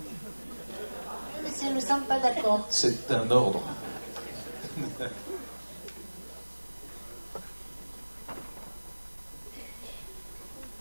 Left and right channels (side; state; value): both; inverted; correlation -1.00